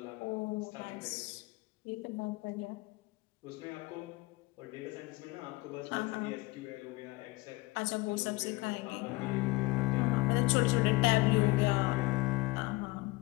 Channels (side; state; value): right; quieter; 22.0 dB